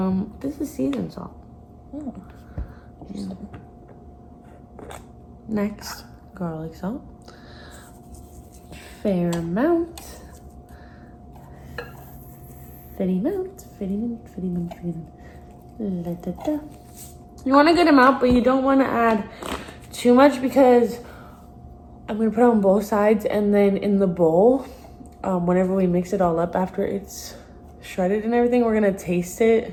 this is seasoned salt. Oh. Next, garlic salt. Fair amount. Fitty amount. Da-da-da. You want a good amount, but you don't want to add too much because I'm going to put it on both sides, and then in the bowl, whenever we mix it all up after it's shredded and everything, we're going to taste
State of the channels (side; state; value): both; identical; correlation 1.00